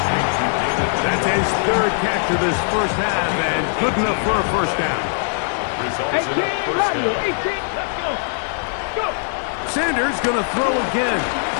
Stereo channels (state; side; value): silent; right; 65 dB below the other